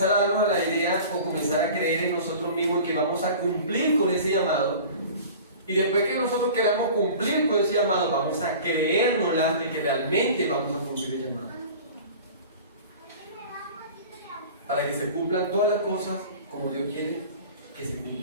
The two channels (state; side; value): inverted; both; correlation -0.40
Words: a darnos la idea o comenzar a creer en nosotros mismos que vamos a cumplir con ese llamado. Y después que nosotros queramos cumplir con ese llamado, vamos a creérnosla de que realmente vamos a cumplir el llamado. Para que se cumplan todas las cosas como Dios quiere que se